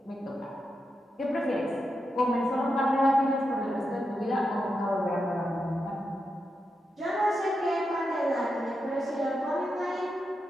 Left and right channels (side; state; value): both; normal; correlation 0.86